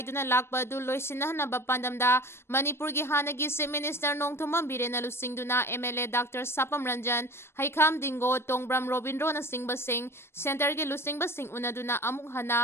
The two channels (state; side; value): late; right; 0.12 ms